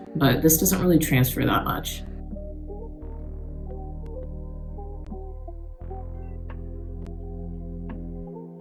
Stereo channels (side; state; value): both; identical; correlation 1.00